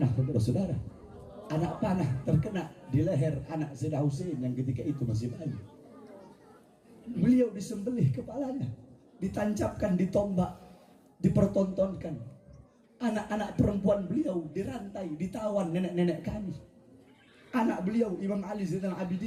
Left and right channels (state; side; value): identical; both; correlation 1.00